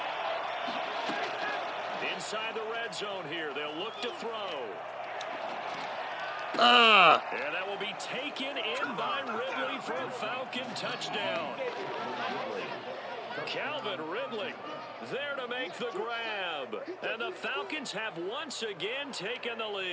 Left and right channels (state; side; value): identical; both; correlation 1.00